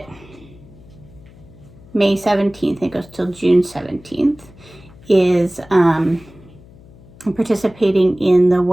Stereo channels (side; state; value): left; noise; hum, 23 dB below the sound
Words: May 17th, it goes till June 17th, is I'm participating in the